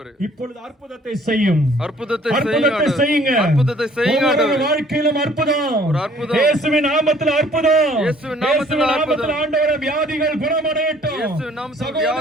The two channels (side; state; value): both; normal; correlation 0.57